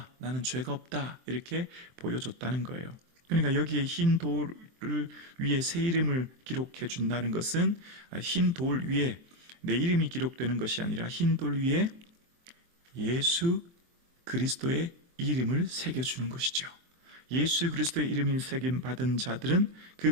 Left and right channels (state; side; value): late; left; 23 ms